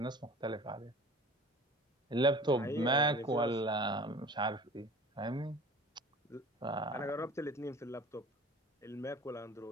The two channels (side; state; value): both; normal; correlation 0.43